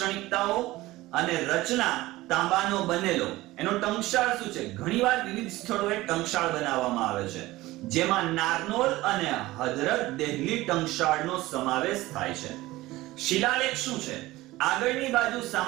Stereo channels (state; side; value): quieter; left; 18.2 dB